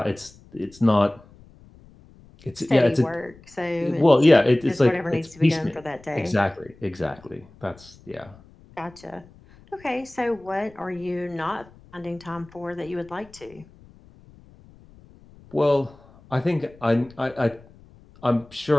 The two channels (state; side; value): noise; left; rumble, 25 dB below the sound